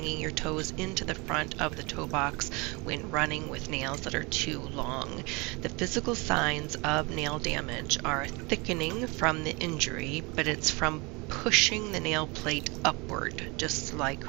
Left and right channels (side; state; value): left; quieter; 27.2 dB